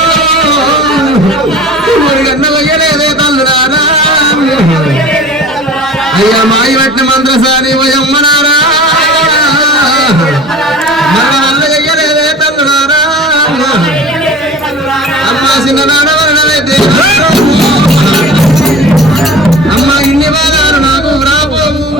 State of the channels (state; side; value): normal; both; correlation 0.40